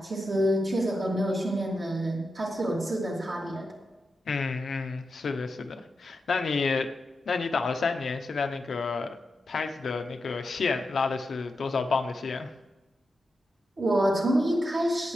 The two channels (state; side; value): normal; both; correlation 0.88